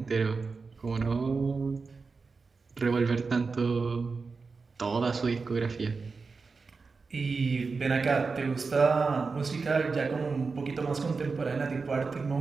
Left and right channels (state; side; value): quieter; left; 4.5 dB